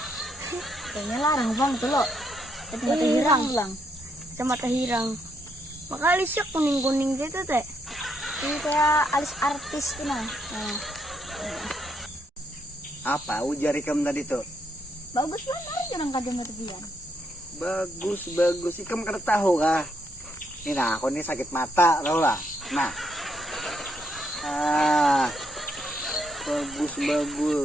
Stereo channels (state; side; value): normal; both; correlation 0.76